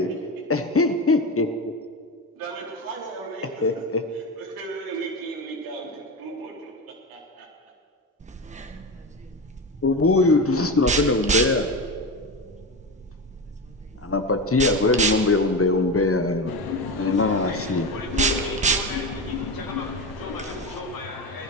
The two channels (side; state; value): both; normal; correlation 0.20